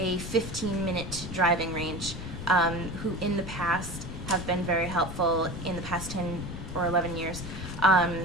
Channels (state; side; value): noise; left; rumble, 10 dB below the sound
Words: driving range who in the past have been very helpful in the past 10 or 11 years